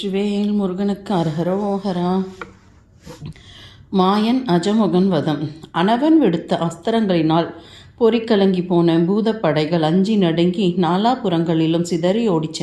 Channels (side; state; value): both; identical; correlation 1.00